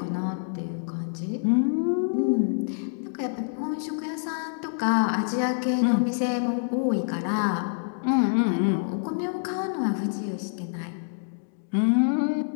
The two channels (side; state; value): right; silent; digital silence